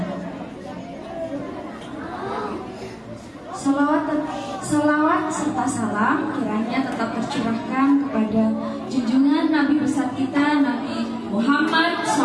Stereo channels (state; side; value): identical; both; correlation 1.00